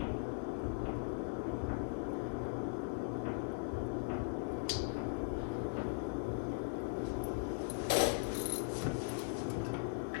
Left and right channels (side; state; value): right; silent; digital silence